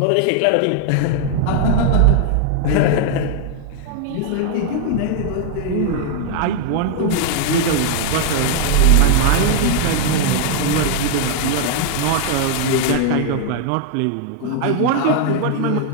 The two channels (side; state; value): both; different; correlation 0.00